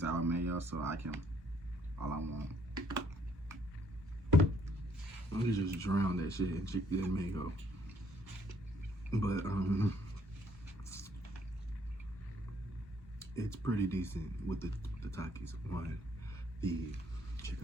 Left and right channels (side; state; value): both; normal; correlation 0.65